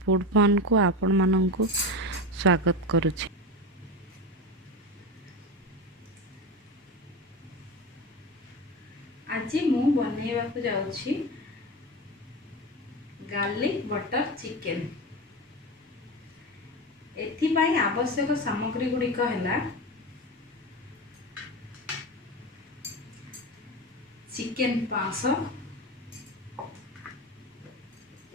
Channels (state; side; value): normal; both; correlation 0.23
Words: fun को आपण मानक स्वागत करुछि। आज मु बनैबा को जाउछि गार्लिक बटर चिकेन। एथि पई आवश्यक सामग्री गुड़िक है चिकेन 500,